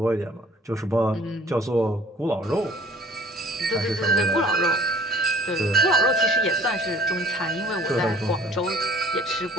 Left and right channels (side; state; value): both; normal; correlation 0.51